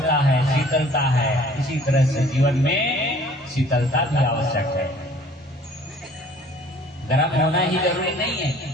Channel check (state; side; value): normal; both; correlation 0.53